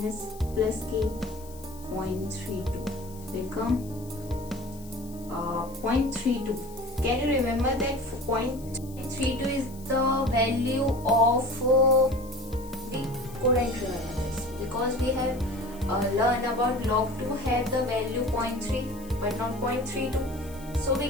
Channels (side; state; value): left; noise; hiss, 21 dB below the sound